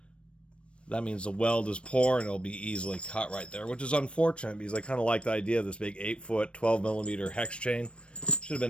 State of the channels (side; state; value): right; late; 0.059 ms